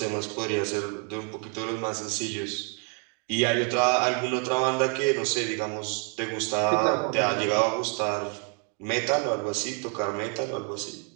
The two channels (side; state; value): left; quieter; 38.3 dB